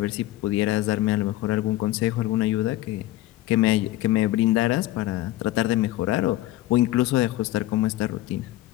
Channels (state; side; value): quieter; right; 15.6 dB